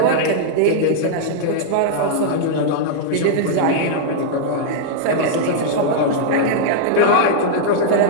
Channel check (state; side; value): different; both; correlation -0.01